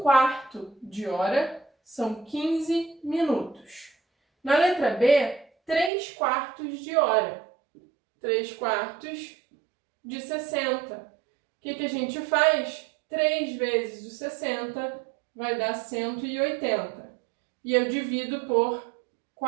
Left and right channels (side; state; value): left; drops out; at 5.9 s